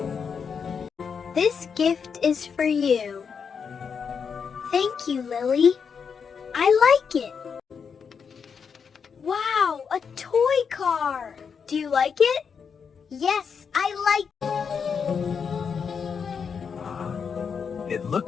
This gift is for you. Thank you, Lily. I like it. Wow, a toy car. Do you like it? Yes, I like it. It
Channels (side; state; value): right; quieter; 6.3 dB